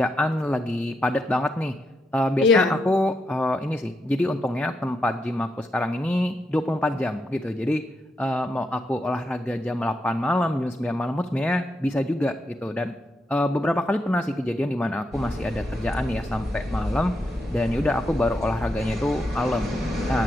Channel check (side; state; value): both; normal; correlation 0.82